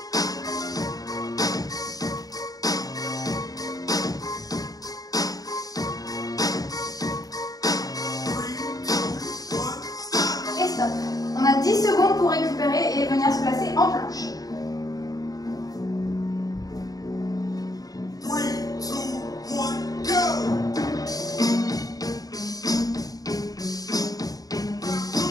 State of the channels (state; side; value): late; right; 0.18 ms